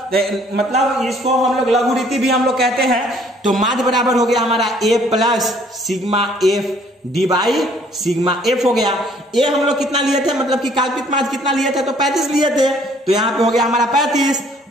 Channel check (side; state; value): both; normal; correlation 0.60